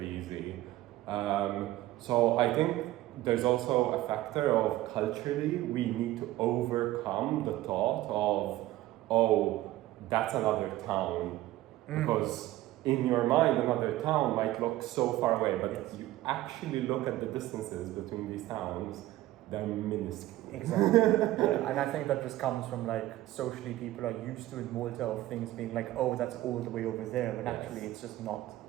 easy. So I think there's also a factor of culturally we need to overcome the thought of, oh, that's another town. Because in your mind, another town might look so far away, but if you actually look at the distances between these towns, they're minuscule. Exactly. And I think that just comes from like socially people are used to in Malta of things being like, oh, that's all the way over there, when actually it's just not.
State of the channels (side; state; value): left; quieter; 15.9 dB